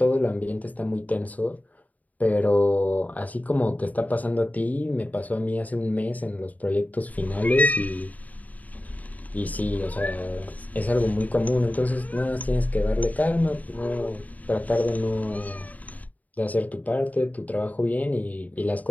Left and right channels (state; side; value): late; right; 0.075 ms